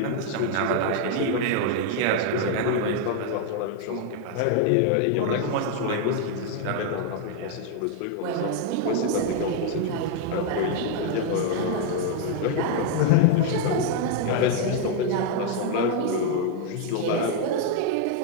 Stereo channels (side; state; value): both; different; correlation 0.00